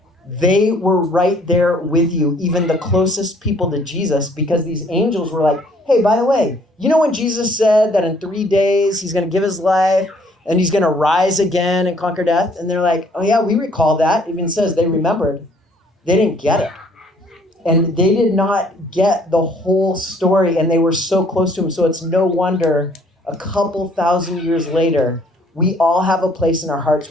they were right there with you, even the closest people to Jesus, because these angels were like, hey, by the way, you know when Jesus said that in 3 days he's going to give his life and he's going to rise again and conquer death? And they're like, oh yeah, we recall that. It even says they remembered. They didn't get it. And they did not get the whole story, and they were so close to him. So it's no wonder a couple thousand years later, we all have a place in our hearts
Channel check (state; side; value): normal; both; correlation 0.61